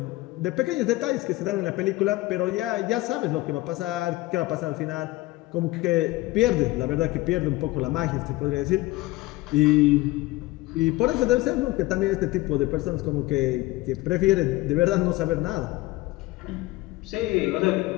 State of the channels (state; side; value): quieter; right; 19.4 dB